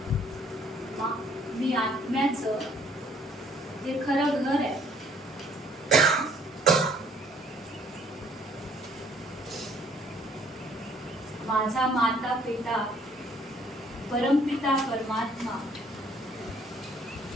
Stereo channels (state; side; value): normal; both; correlation 0.61